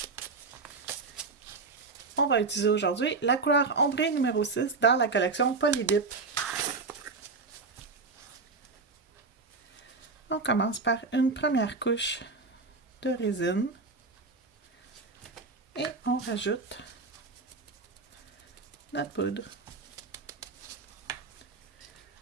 On va utiliser aujourd'hui la couleur ombrée numéro 6 dans la collection Polydip. On commence par une première couche de résine et on rajoute notre poudre.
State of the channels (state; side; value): quieter; left; 4.2 dB